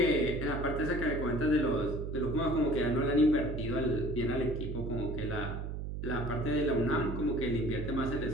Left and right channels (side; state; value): right; noise; hum, 5 dB below the sound